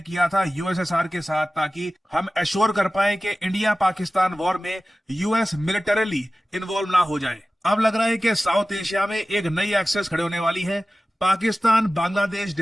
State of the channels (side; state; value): both; normal; correlation 0.96